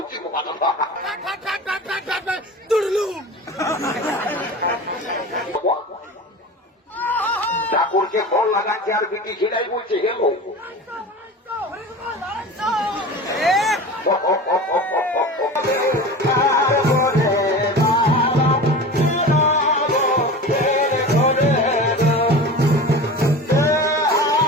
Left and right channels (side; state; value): both; normal; correlation 0.33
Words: ঠাকুরকে ফল লাগাচ্ছে আর বিটি সেটাই বলছে হেলো